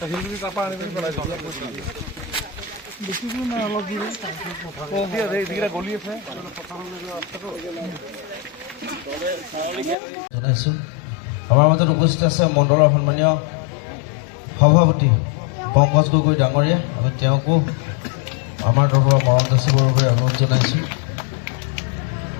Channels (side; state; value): right; drops out; at 10.0 s